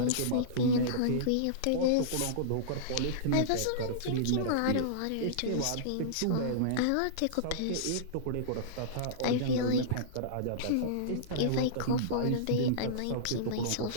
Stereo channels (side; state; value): both; different; correlation -0.03